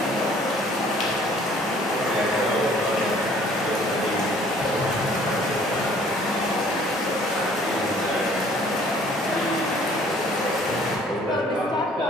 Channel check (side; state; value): both; normal; correlation 0.56